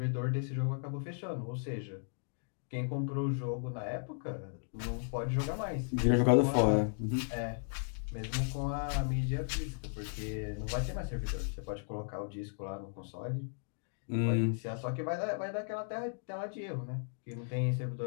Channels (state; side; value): silent; right; digital silence